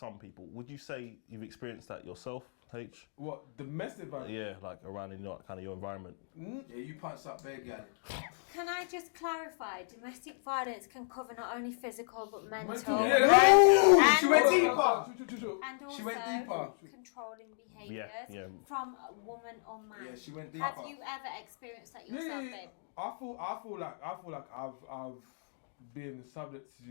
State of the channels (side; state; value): right; silent; digital silence